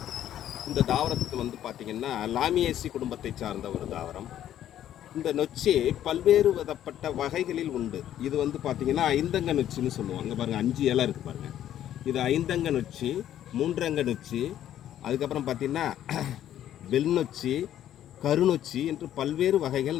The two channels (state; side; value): quieter; right; 11.4 dB